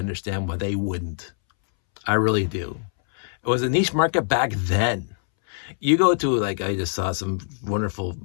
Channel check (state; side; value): silent; right; 63 dB below the other